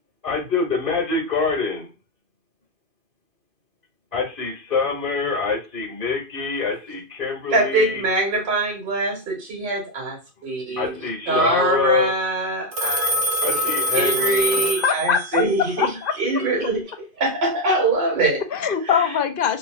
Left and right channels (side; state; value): left; late; 2.5 ms